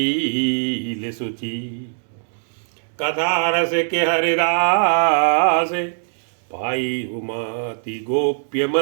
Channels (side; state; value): left; silent; digital silence